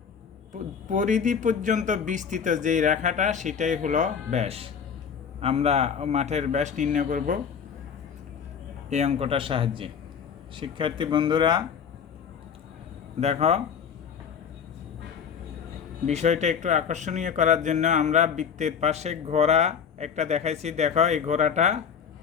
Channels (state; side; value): quieter; right; 7.1 dB